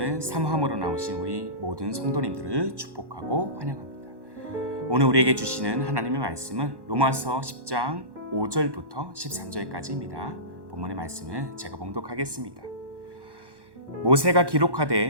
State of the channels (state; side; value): late; left; 1.1 ms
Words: 사모함으로 나오신 우리 모든 성도님들을 축복하고 환영합니다. 오늘 우리에게 주시는 하나님의 말씀은 로마서 10장 5절부터 13절까지입니다. 본문의 말씀을 제가 봉독하겠습니다. 모세가